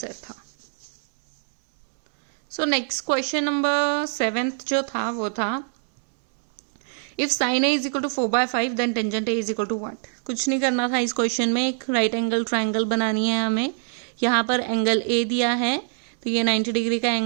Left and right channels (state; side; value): silent; left; 63 dB below the other